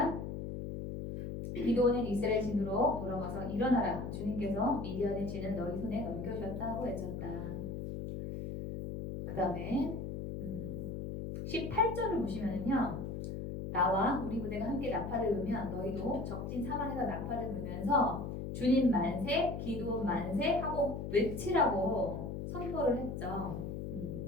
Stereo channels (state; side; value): noise; left; hum, 5 dB below the sound